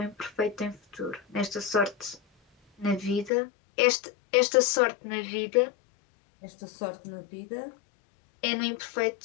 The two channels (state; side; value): drops out; right; at 3.3 s